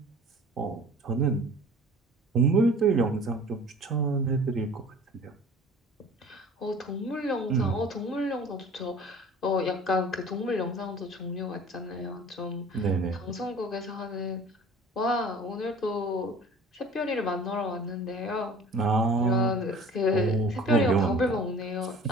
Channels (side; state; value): both; normal; correlation 0.45